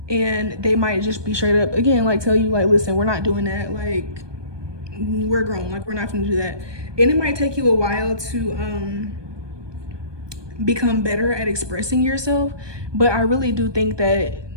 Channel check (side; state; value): left; late; 1.2 ms